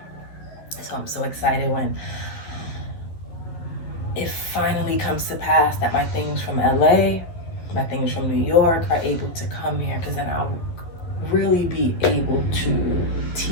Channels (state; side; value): late; right; 12 ms